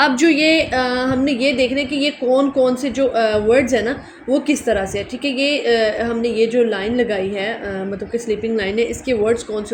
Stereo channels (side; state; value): both; identical; correlation 1.00